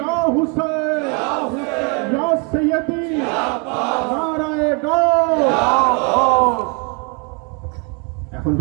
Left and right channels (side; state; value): left; quieter; 33.3 dB